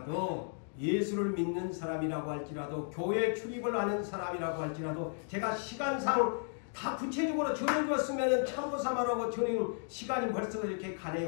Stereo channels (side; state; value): right; silent; 55 dB below the other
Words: 예수를 믿는 사람이라고 할지라도 교회 출입을 하는 사람이라고 할지라도 제가 시간상 다 구체적으로 전해주었으면 참고삼아라고 전해 시간이 벌써 이렇게